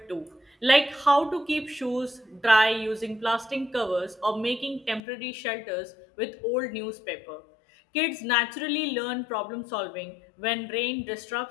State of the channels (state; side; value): drops out; right; at 5.0 s